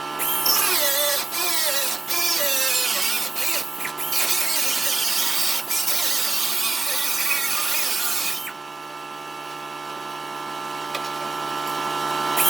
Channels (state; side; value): quieter; left; 3.6 dB